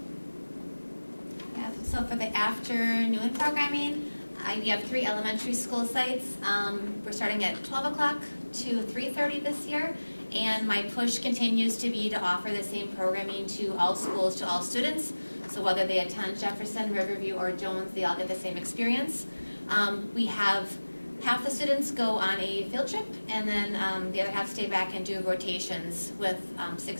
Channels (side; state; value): both; inverted; correlation -1.00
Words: So for the afternoon programming, we have 3 elementary school sites. We're starting at 12 o'clock to 3:30 this year, and my push continues to be to offer the same programming to all schools, to all students. So whether they attend Jefferson, Riverview, or Jones, they all get the same experience. We have half the students go on a field trip, and then the other half stay back and do rotations with